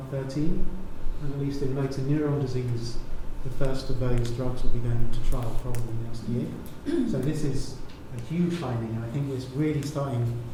And at least in motor neuron disease, the first of those drugs will be going into trial probably next year. So this is a huge finding, and I think it's really starting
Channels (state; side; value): identical; both; correlation 1.00